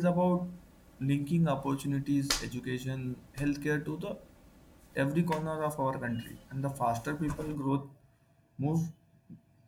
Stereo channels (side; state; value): both; identical; correlation 1.00